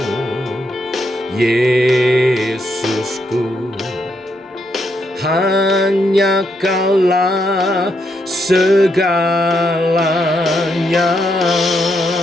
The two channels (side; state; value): both; normal; correlation 0.78